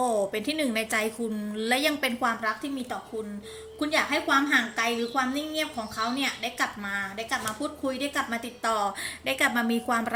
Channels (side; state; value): both; identical; correlation 1.00